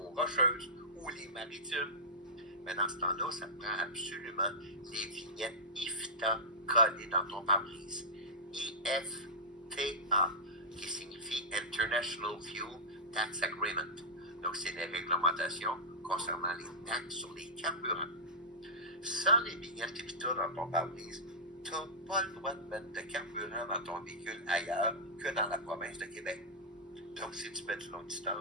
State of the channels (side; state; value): both; normal; correlation -0.13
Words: Rocheuses ou les Maritimes. Mais dans ce temps-là, ça te prend absolument les vignettes IFTA collées dans ton pare-brise. IFTA, qui signifie International Fuel Tax Agreement. Donc, c'est les réglementations concernant les taxes sur les carburants. Sans les vignettes IFTA dans ton pare-brise, tu n'as pas le droit de mettre de carburant dans ton véhicule ailleurs que dans la province de Québec. Donc, si tu mets du longue